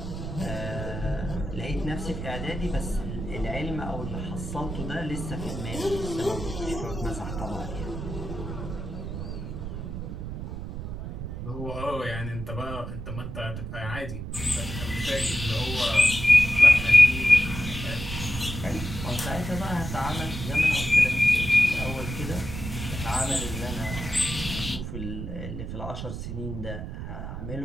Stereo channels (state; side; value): noise; right; rumble, 6 dB below the sound